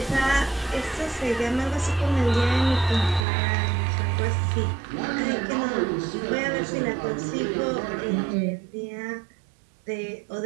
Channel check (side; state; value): left; drops out; at 3.2 s